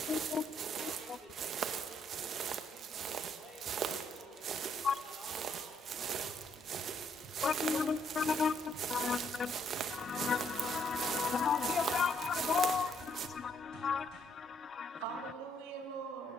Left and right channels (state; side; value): normal; both; correlation 0.71